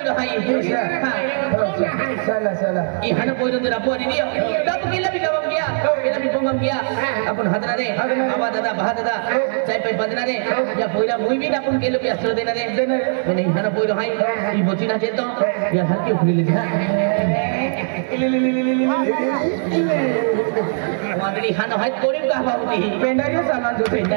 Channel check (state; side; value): silent; left; 57 dB below the other